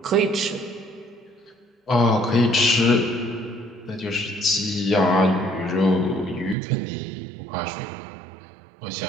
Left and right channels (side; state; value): left; drops out; at 6.6 s